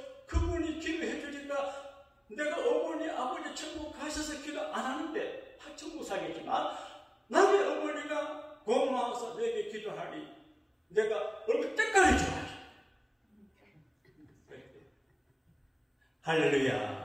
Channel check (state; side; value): identical; both; correlation 1.00